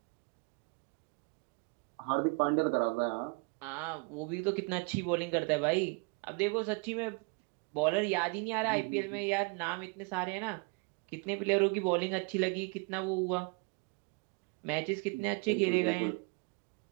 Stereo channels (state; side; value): quieter; left; 30.8 dB